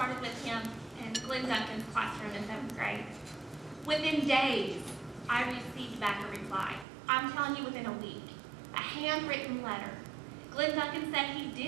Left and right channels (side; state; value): left; drops out; at 6.9 s